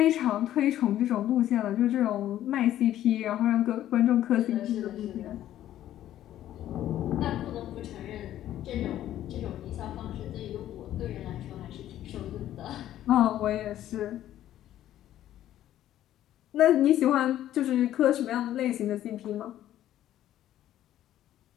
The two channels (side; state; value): right; quieter; 12.5 dB